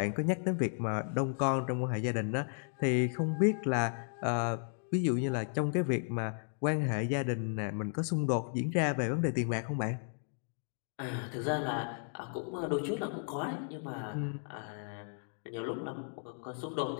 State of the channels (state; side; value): silent; right; 55 dB below the other